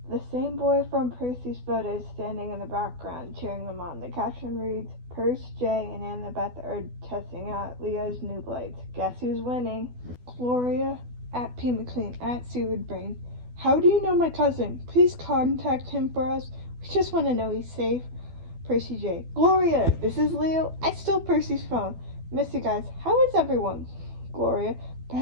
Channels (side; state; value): left; late; 12 ms